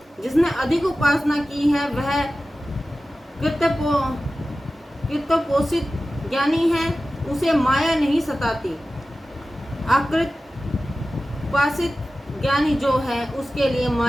जिसने अधिक उपासना की है वह कृतपोषित ज्ञानी है, उसे माया नहीं सताती। अकृतपोषित ज्ञानी जो है उसके लिए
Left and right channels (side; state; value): both; normal; correlation 0.95